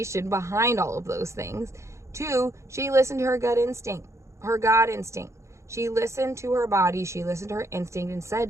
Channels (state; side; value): late; left; 0.14 ms